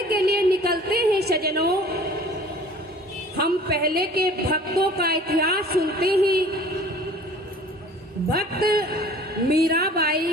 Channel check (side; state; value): both; normal; correlation 0.48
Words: के लिए निकलते हैं सज्जनों, हम पहले के भक्तों का इतिहास सुनते हैं। भक्त